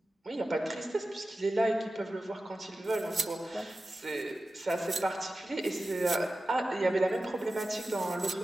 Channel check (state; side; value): normal; both; correlation 0.94